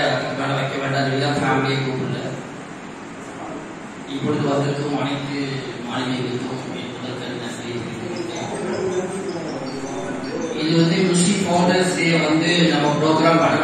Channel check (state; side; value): identical; both; correlation 1.00